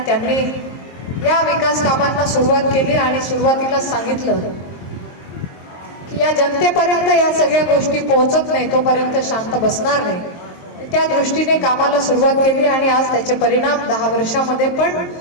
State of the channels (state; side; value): late; right; 23 ms